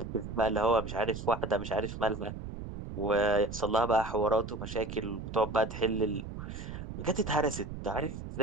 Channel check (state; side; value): noise; right; rumble, 8 dB below the sound